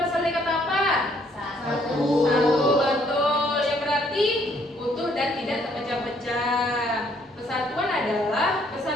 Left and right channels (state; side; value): normal; both; correlation 0.66